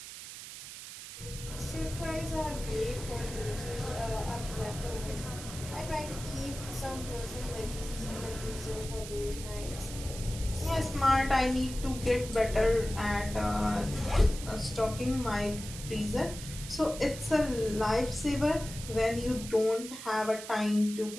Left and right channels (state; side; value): noise; right; hiss, 11 dB below the sound